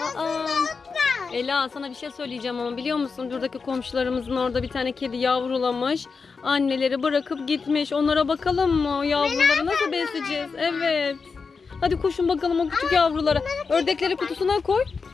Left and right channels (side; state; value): right; quieter; 4.9 dB